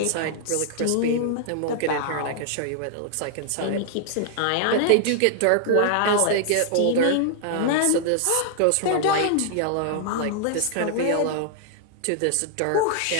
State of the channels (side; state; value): both; different; correlation 0.00